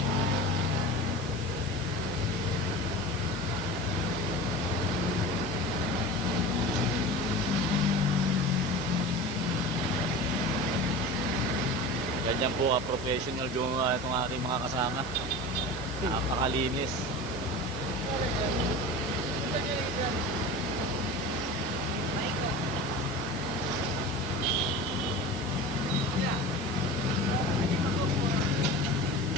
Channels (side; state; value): left; noise; hiss, 17 dB below the sound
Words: Ganyan po professional yung itong ating mga kasama. Napakalinis.